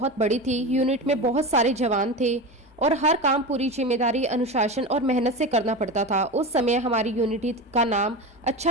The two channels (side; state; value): both; normal; correlation 0.24